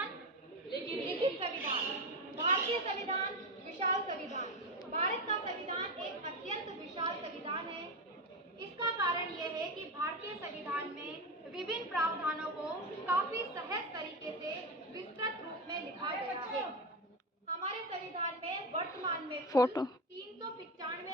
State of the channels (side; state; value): both; normal; correlation 0.17